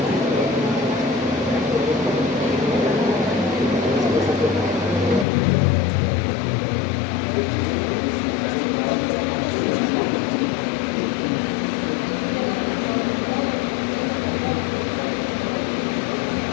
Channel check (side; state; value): right; drops out; at 5.2 s